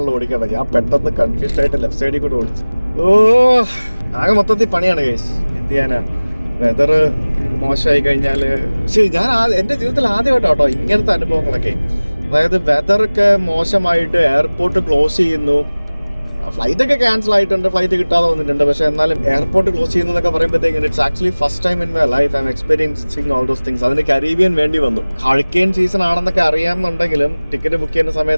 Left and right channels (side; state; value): both; inverted; correlation -1.00